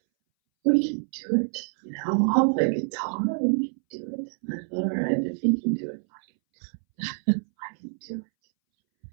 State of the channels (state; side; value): silent; left; 60 dB below the other